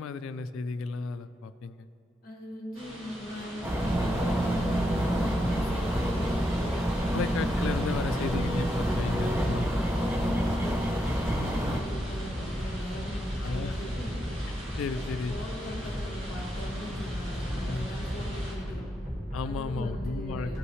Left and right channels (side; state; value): both; normal; correlation 0.82